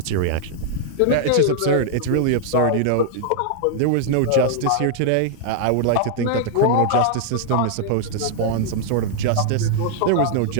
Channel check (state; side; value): different; both; correlation 0.00